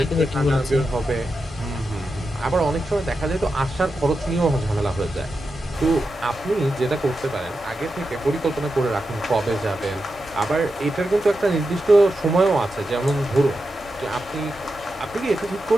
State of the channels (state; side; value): normal; both; correlation 0.89